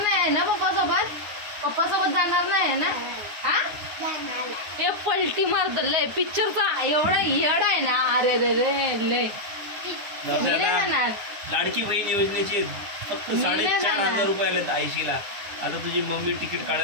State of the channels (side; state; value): left; late; 9.7 ms